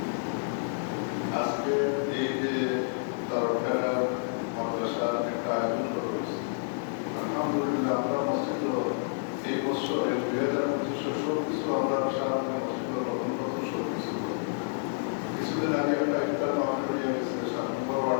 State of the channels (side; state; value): right; silent; 58 dB below the other